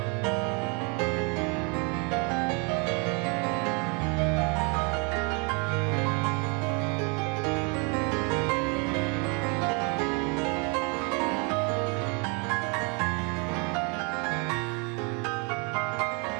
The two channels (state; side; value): quieter; left; 33.4 dB